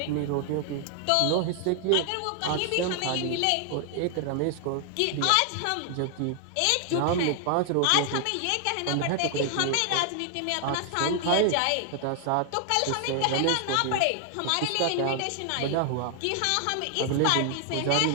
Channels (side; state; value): both; different; correlation 0.00